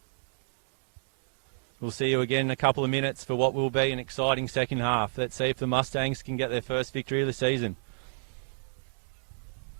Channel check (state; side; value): silent; left; digital silence